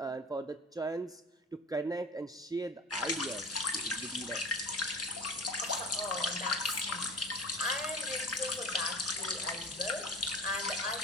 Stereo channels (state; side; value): normal; both; correlation 0.36